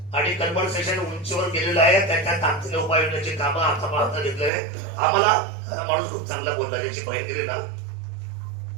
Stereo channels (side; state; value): left; drops out; at 4.5 s